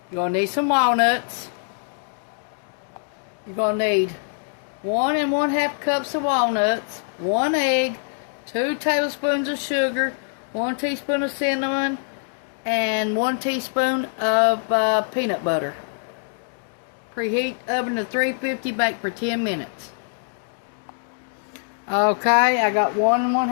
You're going to need some walnuts. You're going to need 1 1/2 cups of walnuts, 1 egg, 2 tablespoons of sugar, 1 teaspoon of cinnamon, and 1 teaspoon of peanut butter. Preheat oven to 350, bake for 10 minutes. Okay, I got 1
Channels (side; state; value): right; silent; digital silence